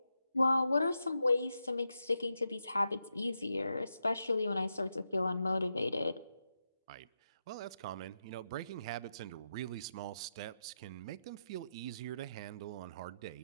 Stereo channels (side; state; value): both; inverted; correlation -0.86